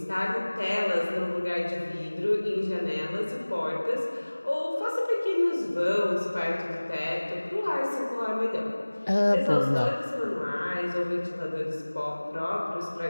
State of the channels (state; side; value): inverted; both; correlation -1.00